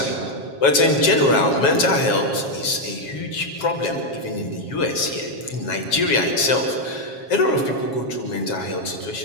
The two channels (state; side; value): late; right; 7.3 ms